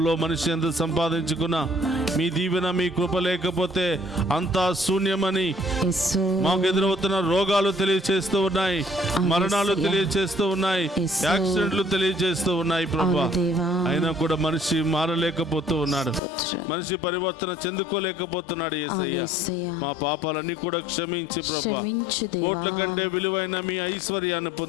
మనిషి ఎంత సంపాదించుకున్నా మీ దీవెన మీ కృప లేకపోతే అంతా శూన్యమని యేసు. మాకు ఎదురవుతున్న రోగాలు తెలియచేస్తూ ఉన్నాయి, మరణాలు తెలియచేస్తూ ఉన్నాయి, యాక్సిడెంట్లు తెలియచేస్తూ ఉన్నాయి ప్రభువా. అయినా కూడా మనిషి మారలేకపోతూ ఉన్నాడు, మనిషి పరివర్తన చెందుకోలేకపోతున్నాడు యేసయ్యా. మా పాపాలన్నీ కూడా క్షమించి ప్రభువా, కోట్ల కంటే విలువైన మీ ఐశ్వర్యాన్ని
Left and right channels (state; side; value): drops out; right; at 16.2 s